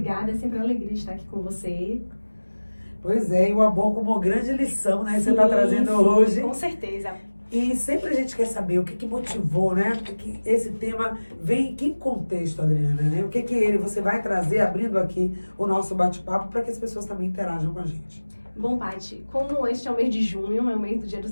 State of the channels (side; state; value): both; inverted; correlation -1.00